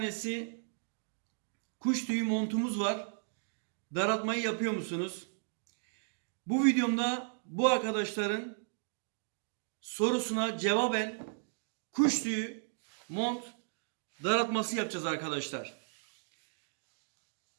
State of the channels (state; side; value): silent; left; digital silence